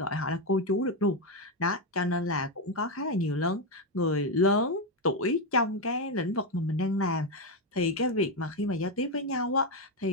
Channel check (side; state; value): both; normal; correlation 0.07